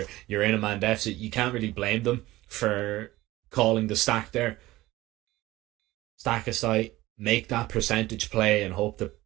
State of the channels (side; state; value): left; quieter; 17.8 dB